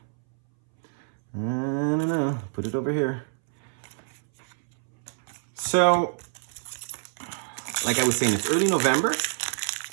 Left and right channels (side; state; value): left; silent; 61 dB below the other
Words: I don't know. Put it over here. So, like I was saying, it's early November.